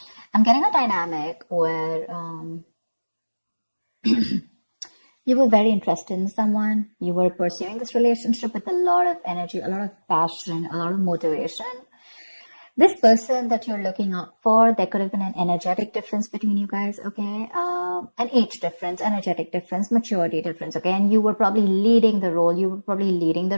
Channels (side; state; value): both; inverted; correlation -1.00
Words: I'm getting a dynamic where you were very interested in someone. You were pursuing this relationship with a lot of energy, a lot of passion, a lot of motivation. This person that you're looking out for, there could have been an energetic difference between you guys, okay? An age difference, energetic difference, maturity difference, okay? And you were probably leading the role. You were probably leading